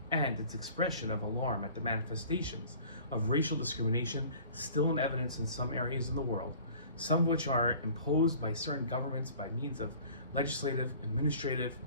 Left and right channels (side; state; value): both; inverted; correlation -0.48